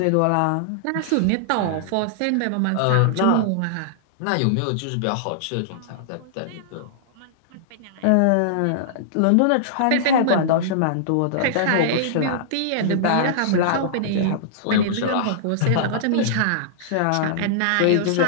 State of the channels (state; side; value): different; both; correlation -0.02